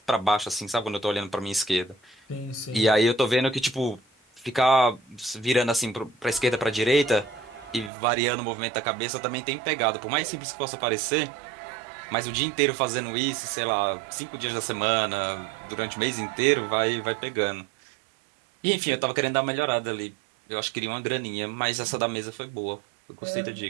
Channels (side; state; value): left; drops out; at 7.9 s